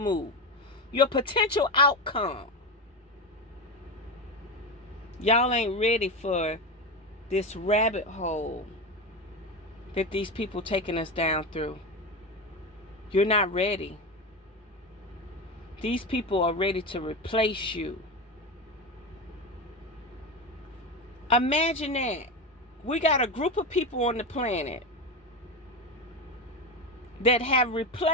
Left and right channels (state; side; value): normal; both; correlation 0.19